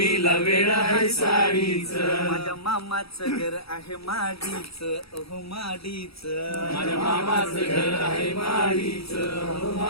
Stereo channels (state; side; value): late; right; 0.77 ms